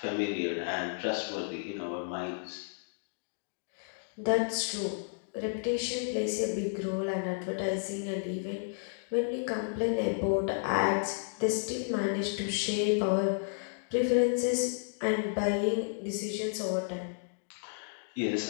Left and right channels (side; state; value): right; silent; digital silence